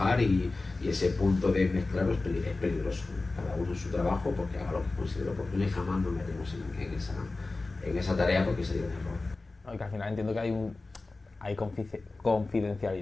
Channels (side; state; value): right; quieter; 3.4 dB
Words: y ese punto de mezclarlo es peligroso. Cada uno en su trabajo, porque haga lo que considere oportuno, y jamás nos metemos en esa tarea, porque sería un error. No, y que al final entiendo que hay